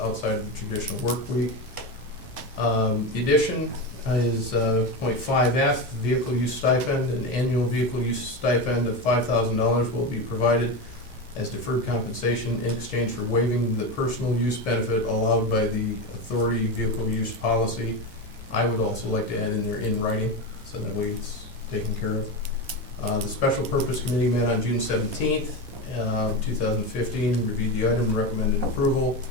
of the traditional work week. The addition is point 5F, vehicle use stipend. An annual vehicle use stipend of $5,000 will be provided as deferred compensation in exchange for waiving the personal use benefit allowed by the authority vehicle use policy. I would also like to add in there in writing, so that way it's taken care of. The Special Purpose Committee met on June 17th, 2015, reviewed the item, recommended approval.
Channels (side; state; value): both; normal; correlation 0.18